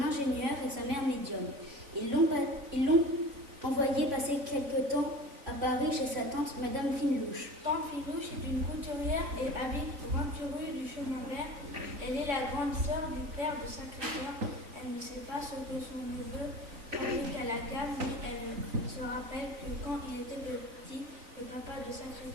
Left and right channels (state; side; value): late; left; 3.7 ms